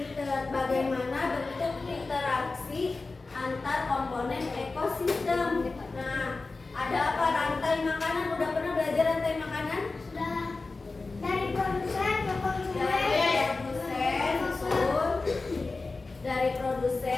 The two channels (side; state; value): right; quieter; 3.7 dB